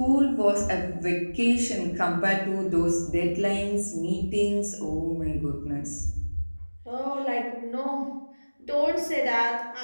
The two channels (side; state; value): both; inverted; correlation -1.00